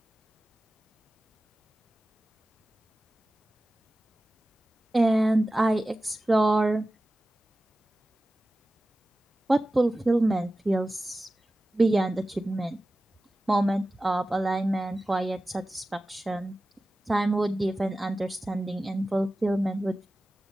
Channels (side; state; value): both; normal; correlation 0.95